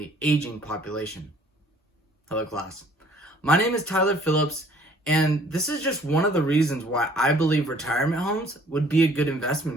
aging population. Hello class. My name is Tyler Phillips, and this is just one of the reasons why I believe retirement homes would be a good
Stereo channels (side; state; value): both; normal; correlation 0.57